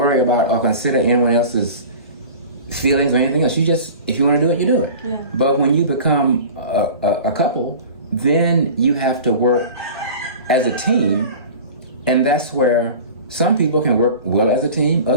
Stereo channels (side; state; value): both; inverted; correlation -0.38